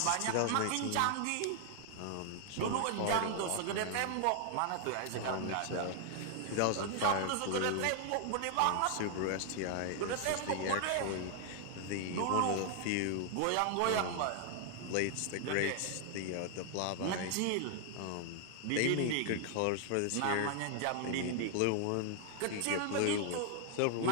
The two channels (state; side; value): different; both; correlation 0.00